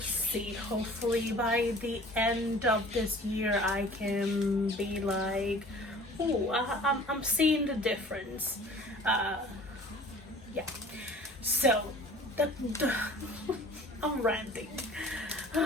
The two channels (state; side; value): normal; both; correlation 0.47